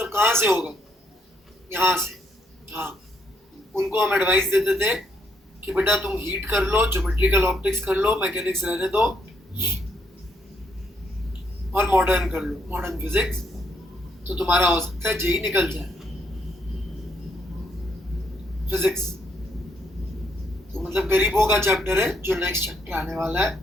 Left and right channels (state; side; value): normal; both; correlation 0.73